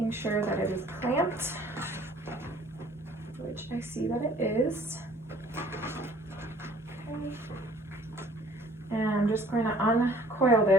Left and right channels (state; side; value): normal; both; correlation 0.54